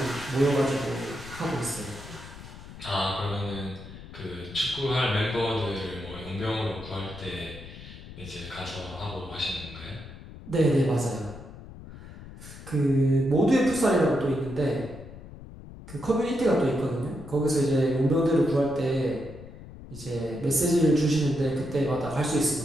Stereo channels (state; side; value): noise; left; rumble, 15 dB below the sound